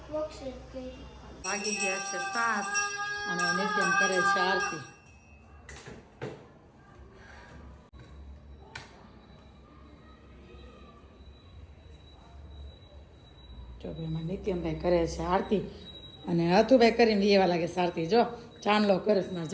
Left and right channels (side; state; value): both; identical; correlation 1.00